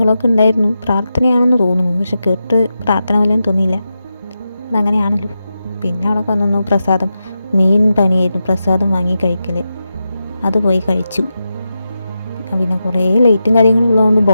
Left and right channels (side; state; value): both; inverted; correlation -0.89